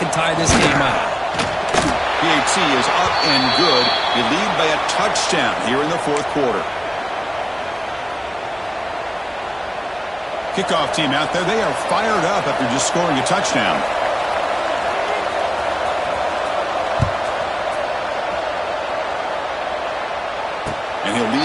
and tie this game up. PAT is up and good. You lead by a touchdown here in the fourth quarter. Kickoff team out there, they are fired up after just scoring a touchdown. And he'll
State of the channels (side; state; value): both; identical; correlation 1.00